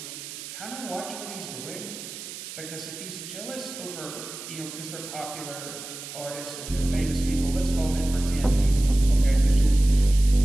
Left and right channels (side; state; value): right; noise; hiss, 11 dB below the sound